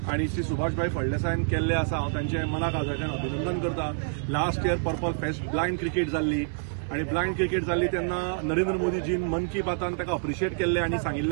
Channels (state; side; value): silent; left; 58 dB below the other